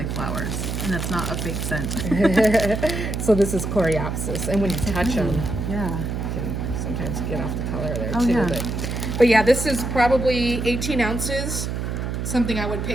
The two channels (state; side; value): noise; right; hum, 3 dB below the sound